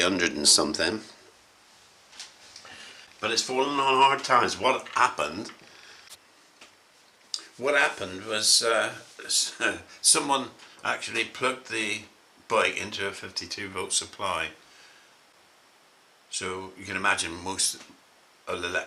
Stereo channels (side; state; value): both; identical; correlation 1.00